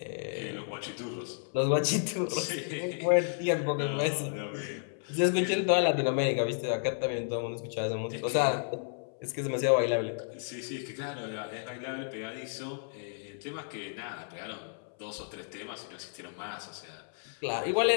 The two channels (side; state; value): right; silent; 56 dB below the other